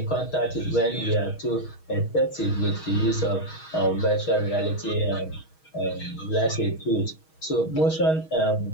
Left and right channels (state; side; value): late; right; 6.3 ms